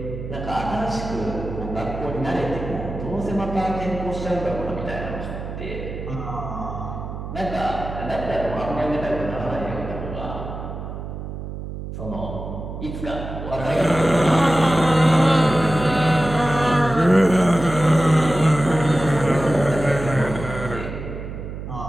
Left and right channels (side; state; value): right; noise; hum, 8 dB below the sound